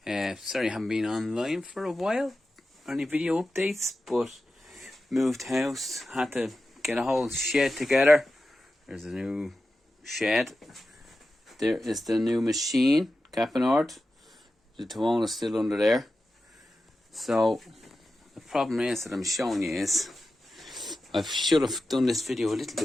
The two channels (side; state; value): both; normal; correlation 0.92